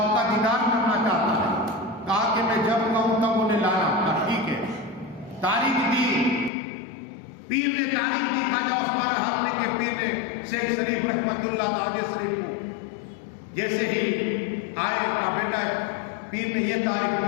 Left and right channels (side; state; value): right; drops out; at 6.5 s